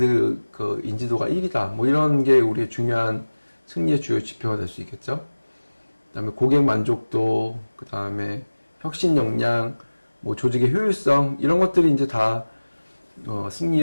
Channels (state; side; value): inverted; both; correlation -1.00